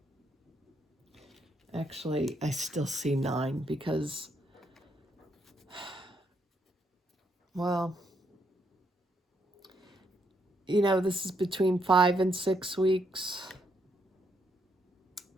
Actually, I still see 9 because, well, you know, this is between 5 and 6 weeks.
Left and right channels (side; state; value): both; normal; correlation 0.75